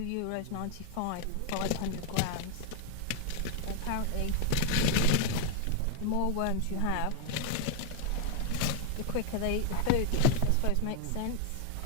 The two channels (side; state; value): both; different; correlation 0.01